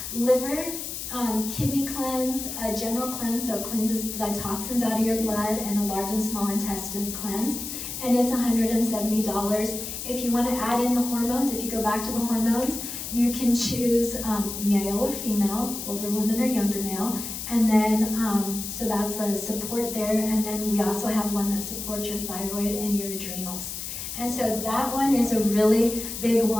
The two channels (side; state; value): left; noise; hiss, 7 dB below the sound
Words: liver, kidney cleanse, a general cleanse, so it cleanses the toxins out of your blood, and a large and small intestine cleanse. And it's $170. If you want to add in the hormones, if you go back to the hormones, you can choose male or female, older women or younger male. And then, so that's a support there. And then we also have one that supports your thyroid and your adrenals. And so that one is a really big